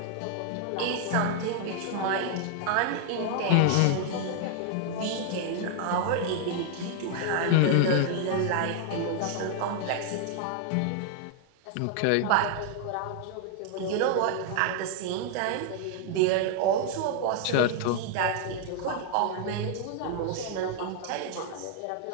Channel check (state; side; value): different; both; correlation 0.00